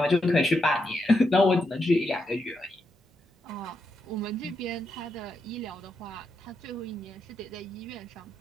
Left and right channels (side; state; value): both; normal; correlation 0.83